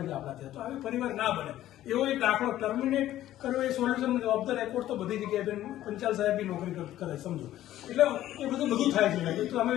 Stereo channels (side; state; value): right; quieter; 13.5 dB